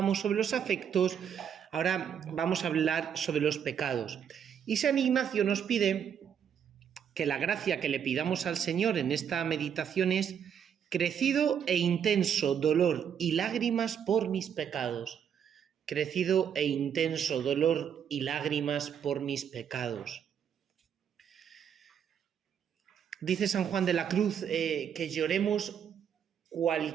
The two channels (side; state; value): left; quieter; 8.2 dB